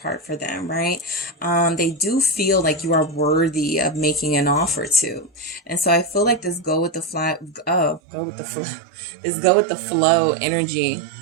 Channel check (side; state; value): left; drops out; at 8.0 s